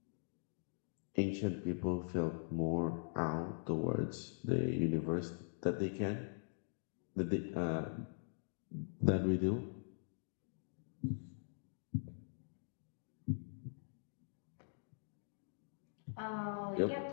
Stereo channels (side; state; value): right; silent; digital silence